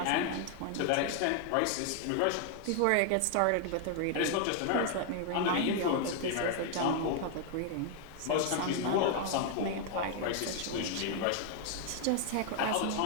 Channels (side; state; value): both; different; correlation 0.00